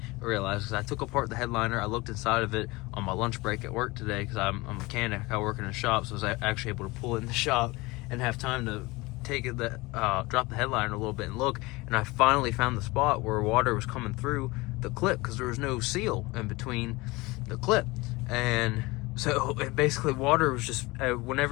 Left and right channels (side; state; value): right; quieter; 22.7 dB